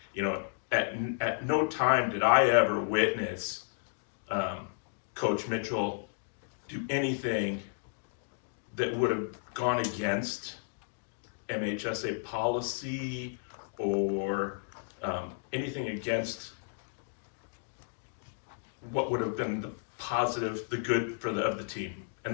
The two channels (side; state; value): right; silent; digital silence